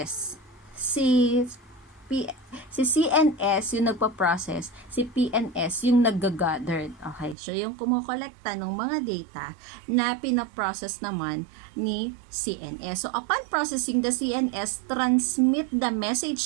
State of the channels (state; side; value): drops out; left; at 7.4 s